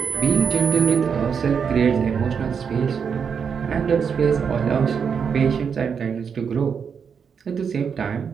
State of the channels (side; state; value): left; quieter; 6.6 dB